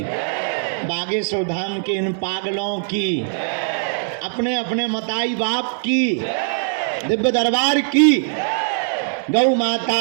बागेश्वर धाम के इन पागलों की, अपने अपने मताई बाप की, दिव्य दरबार की, गौ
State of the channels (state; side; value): silent; left; digital silence